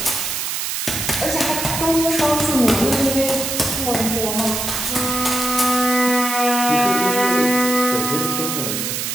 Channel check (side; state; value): right; noise; hiss, 2 dB below the sound